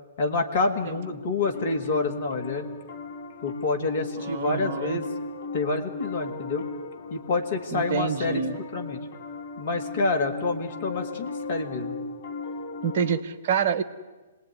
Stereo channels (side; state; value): both; inverted; correlation -0.45